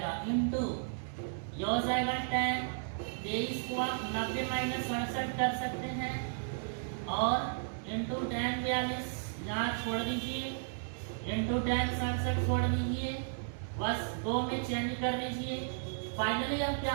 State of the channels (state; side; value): silent; left; digital silence